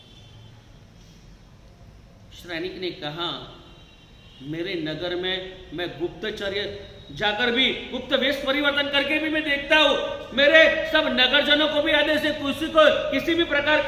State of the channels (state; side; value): identical; both; correlation 1.00